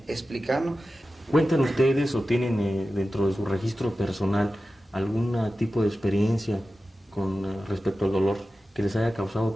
explicarnos. ¿Cuentan ustedes o tienen dentro de su registro personal algún tipo de experiencia con respecto al dolor que les haya causado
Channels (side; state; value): both; normal; correlation 0.94